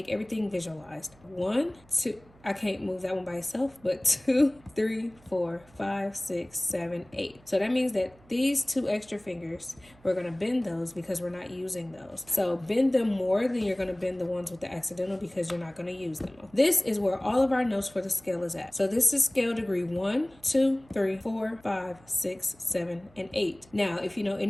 everything visualized. 1, 2. I can't move that one by itself, but 2, 3, 4, 5, 6, 7, 8. So that means that these 2 extra fingers, we're gonna bend those because we're not using those. So bend them more than you're gonna bend the ones with the accidental because you're not gonna use them. This is where all of our notes for the scale is at. So this is scale degree 1, 2, 3, 4, 5, 6, 7, and 8. Now, if you know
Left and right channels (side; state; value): right; noise; hum, 27 dB below the sound